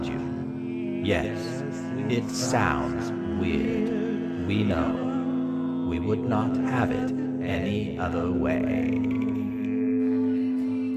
you. Yes, it sounds weird. We know. We would not have it any other way.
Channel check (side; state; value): both; identical; correlation 1.00